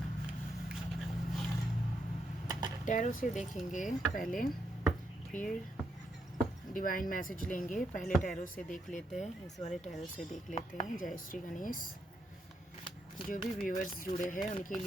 टैरो से देखेंगे पहले, फिर डिवाइन मैसेज लेंगे। पहले टैरो से देख लेते हैं, इस वाले टैरो से देख लेते हैं। जय श्री गणेश। जो भी व्यूअर्स जुड़े हैं उनके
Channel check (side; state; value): both; normal; correlation 0.79